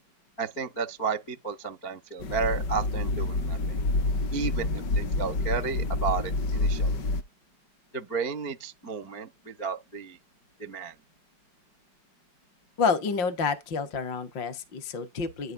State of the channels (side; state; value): right; late; 5.6 ms